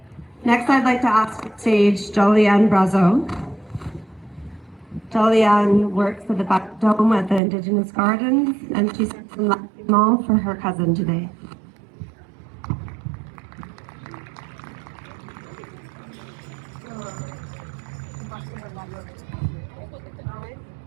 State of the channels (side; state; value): left; drops out; at 7.4 s